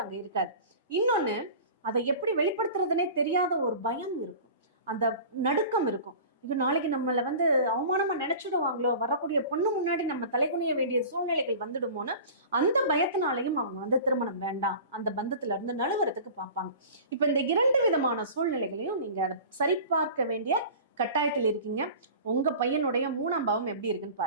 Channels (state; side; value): inverted; both; correlation -0.38